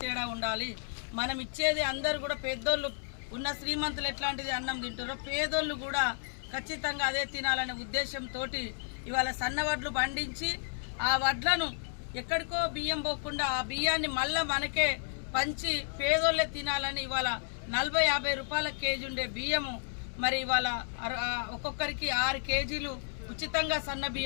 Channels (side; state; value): right; silent; digital silence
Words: తేడా ఉండాలి, మనం ఇచ్చేది అందరూ కూడా పెద్దోళ్ళు ఉన్న శ్రీమంతులు ఎట్లాంటిది అన్నం తింటారో పేదోళ్ళు కూడా ఖచ్చితంగా అదే తినాలనే ఉద్దేశంతో ఇవాళ సన్న వడ్లు పండించి ఆ వడ్లను ఎక్కడికో బియ్యం పోకుండా ఆ బియ్యాన్ని మళ్ళీ మనకే పంచి పేదోళ్ళే తినాలని ఇవాళ 40-50 రూపాయల కేజీ ఉండే బియ్యము మరి ఇవాళ ఒక్కొక్కరికి 6 కేజీలు ఉచితంగా సన్న